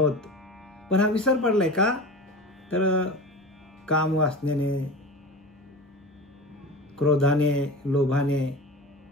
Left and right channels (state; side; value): normal; both; correlation 0.31